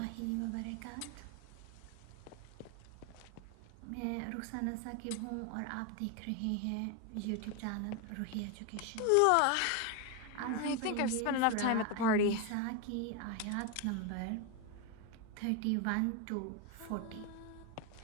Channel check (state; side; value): different; both; correlation 0.01